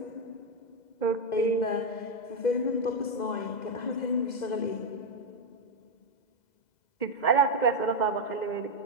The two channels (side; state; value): right; late; 2.0 ms